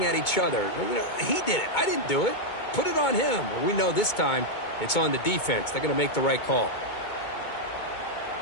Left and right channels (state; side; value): late; right; 2.2 ms